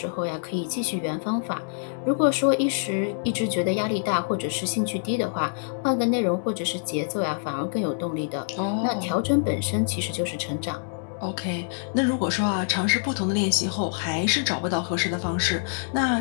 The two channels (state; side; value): silent; right; digital silence